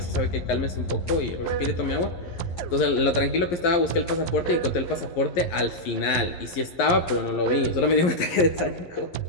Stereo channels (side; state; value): right; late; 11 ms